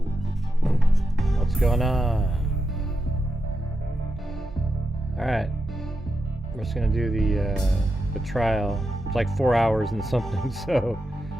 what's going on? All right, we're just gonna do the trial. It's like 4 hours and something, so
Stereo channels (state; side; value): normal; both; correlation 0.87